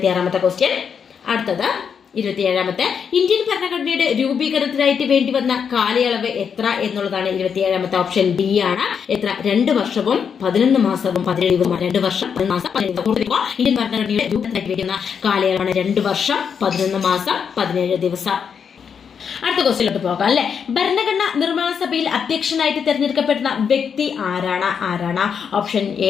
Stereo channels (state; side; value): quieter; right; 6.9 dB